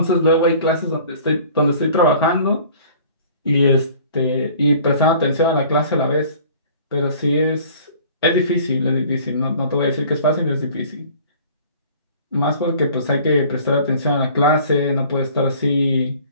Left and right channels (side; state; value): both; inverted; correlation -0.49